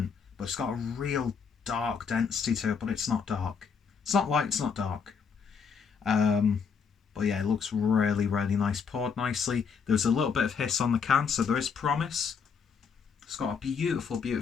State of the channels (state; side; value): quieter; right; 6.1 dB